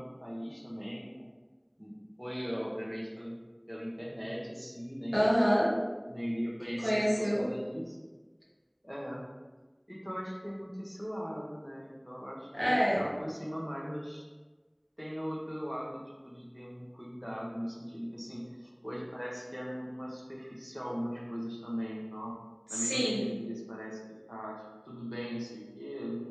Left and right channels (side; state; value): both; identical; correlation 1.00